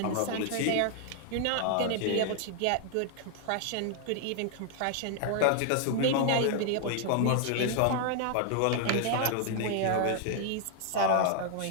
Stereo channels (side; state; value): both; different; correlation 0.00